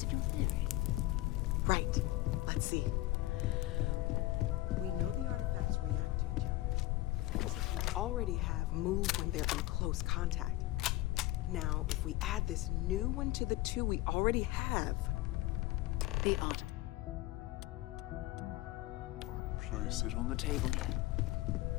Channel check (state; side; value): quieter; right; 17.9 dB